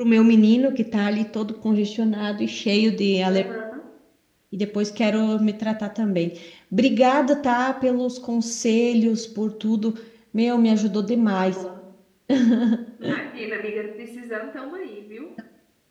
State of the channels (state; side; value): identical; both; correlation 1.00